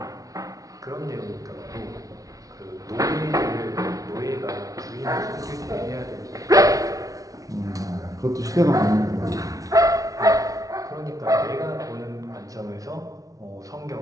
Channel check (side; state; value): left; late; 0.17 ms